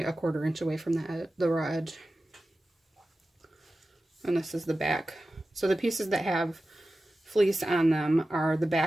a 1/4 inch away from the raw edge. And this is the back. So the pieces that have fleece on them are the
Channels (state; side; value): normal; both; correlation 0.94